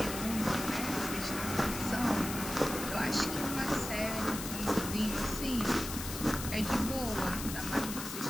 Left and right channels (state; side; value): noise; left; hiss, 7 dB below the sound